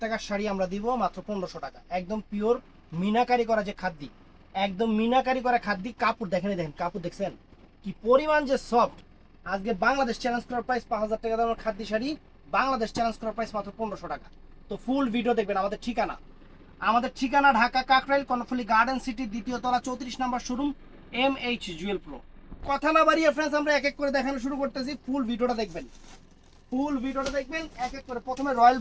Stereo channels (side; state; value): both; identical; correlation 1.00